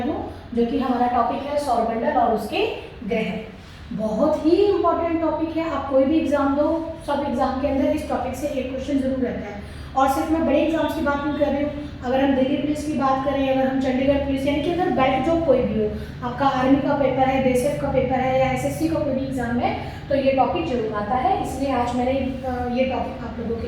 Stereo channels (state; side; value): identical; both; correlation 1.00